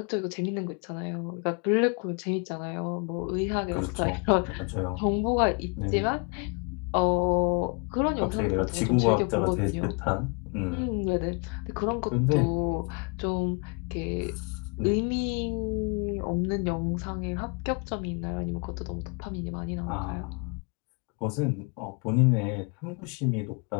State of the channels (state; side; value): quieter; right; 34.6 dB